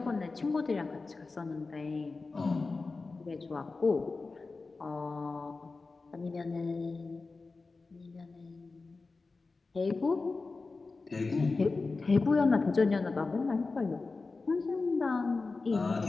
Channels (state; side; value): quieter; right; 3.9 dB